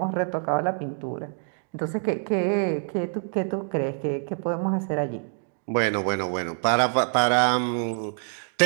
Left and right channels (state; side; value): silent; left; 56 dB below the other